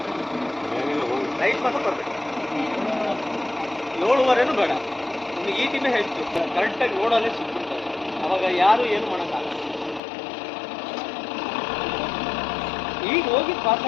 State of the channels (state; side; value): drops out; right; at 10.0 s